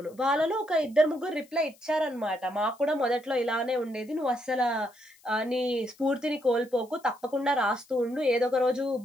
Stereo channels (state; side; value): noise; left; hiss, 28 dB below the sound